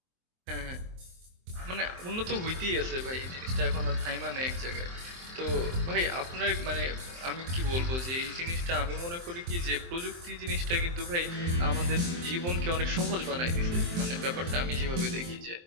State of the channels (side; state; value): left; late; 23 ms